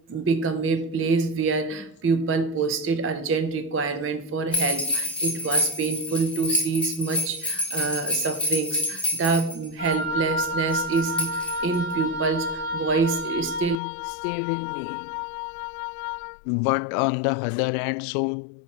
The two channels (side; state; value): right; drops out; at 13.8 s